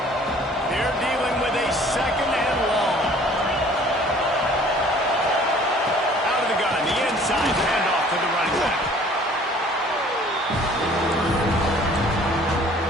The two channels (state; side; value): normal; both; correlation 0.53